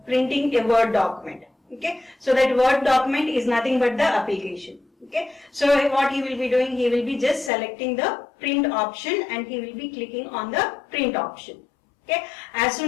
printing a Word document. Okay, so that Word document is nothing but the application. Okay, so what he will be doing, he will be just selecting the print option and he will be clicking on the print option. Okay, as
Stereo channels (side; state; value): right; drops out; at 7.5 s